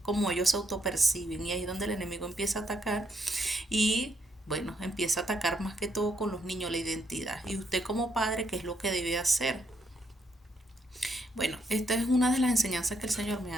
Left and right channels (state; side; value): normal; both; correlation 0.75